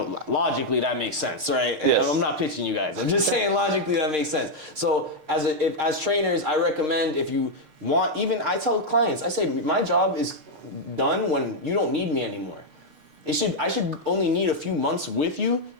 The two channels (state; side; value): late; left; 6.5 ms